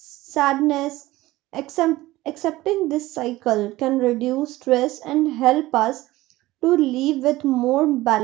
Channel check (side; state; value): left; quieter; 17.8 dB